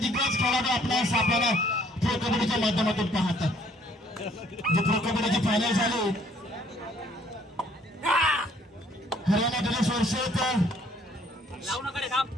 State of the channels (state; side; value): normal; both; correlation 0.62